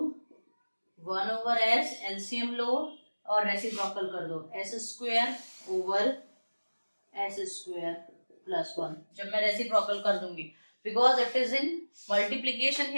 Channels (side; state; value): both; inverted; correlation -1.00